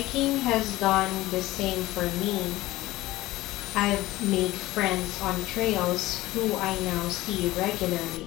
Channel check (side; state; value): right; quieter; 17.6 dB